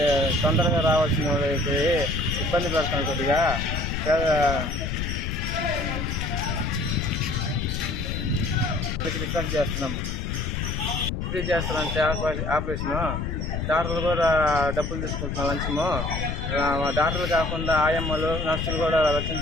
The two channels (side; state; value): left; noise; rumble, 3 dB below the sound